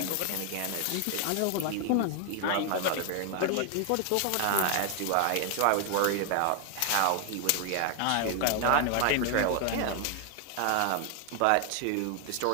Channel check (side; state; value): both; different; correlation 0.00